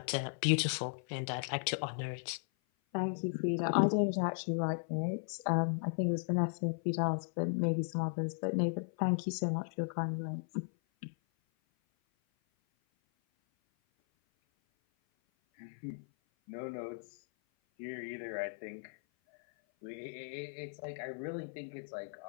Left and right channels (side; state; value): right; silent; 54 dB below the other